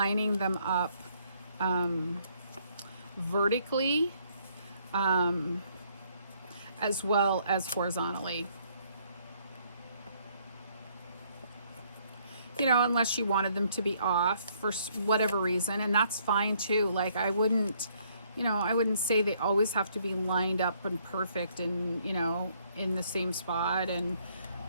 them up vertically as well as horizontally. You know, unless you wanted them to be off for whatever reason, and that's fine too. Like I wouldn't say they always have to be lined up and perfect and, you know, in the same spot and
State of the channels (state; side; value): inverted; both; correlation -0.67